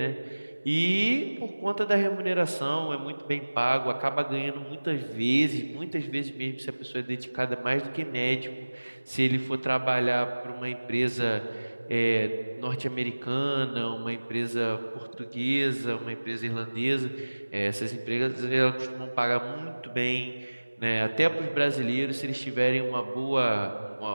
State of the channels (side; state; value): both; inverted; correlation -1.00